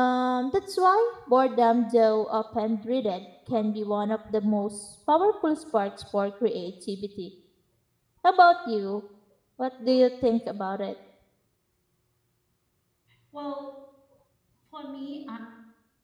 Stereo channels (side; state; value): both; identical; correlation 1.00